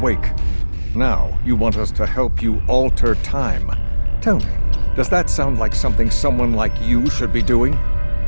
Now, you want us to help you alter time. Tell me, does that sound like something someone like you should be doing?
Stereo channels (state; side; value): inverted; both; correlation -1.00